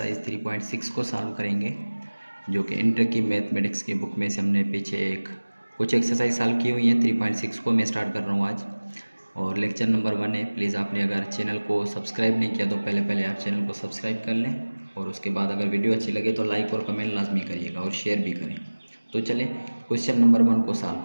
3.6 को सॉल्व करेंगे, जो कि इंटर की मैथमेटिक्स की बुक में से हमने पीछे कुछ एक्सरसाइज सॉल्व की हुई हैं। 3.6 को मैं स्टार्ट कर रहा हूँ आज, और लेक्चर नंबर 1 है। प्लीज़ आपने अगर चैनल को सब्सक्राइब नहीं किया तो पहले आप चैनल को सब्सक्राइब कर लें, और उसके बाद अगर वीडियो अच्छी लगे तो लाइक और कमेंट लाजमी करिएगा और शेयर भी करें। तो चलें क्वेश्चन नंबर 1 को सॉल्व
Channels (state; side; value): inverted; both; correlation -1.00